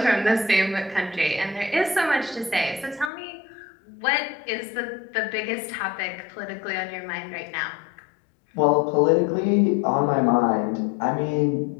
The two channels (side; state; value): right; drops out; at 3.1 s